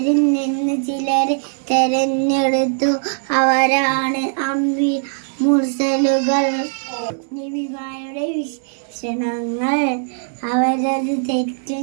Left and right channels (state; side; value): silent; left; digital silence